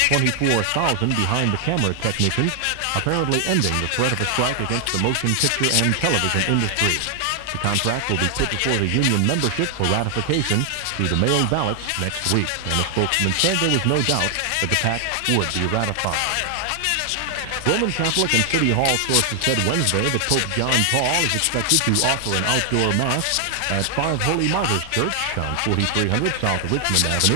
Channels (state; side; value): different; both; correlation 0.00